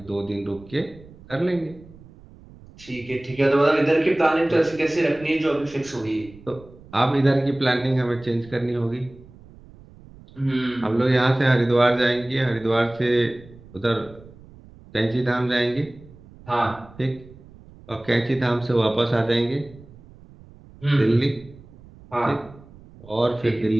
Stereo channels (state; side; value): noise; right; rumble, 22 dB below the sound